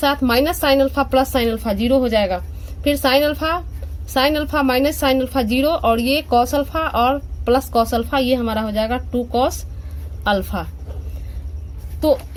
minus sine alpha plus sine alpha 0 हो जाएगा, फिर sign alpha minus sine alpha 0 और ये कॉस अल्फा और प्लस कॉस अल्फा, ये हमारा हो जाएगा 2 कॉस अल्फा। तो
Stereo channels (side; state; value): both; identical; correlation 1.00